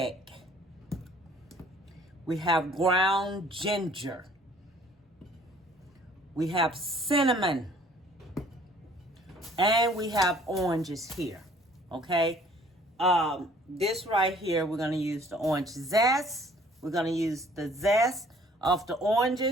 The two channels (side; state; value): both; normal; correlation 0.56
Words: We have ground ginger. We have cinnamon. And we have oranges here. Okay. This right here, we're going to use the orange zest. We're going to use the zest of the